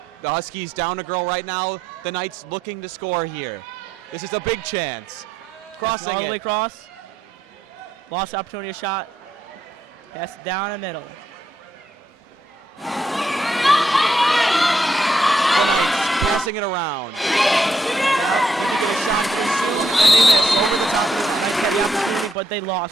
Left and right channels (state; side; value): normal; both; correlation 0.76